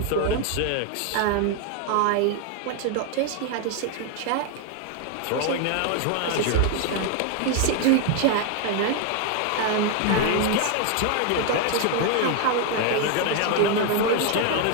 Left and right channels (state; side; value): different; both; correlation 0.00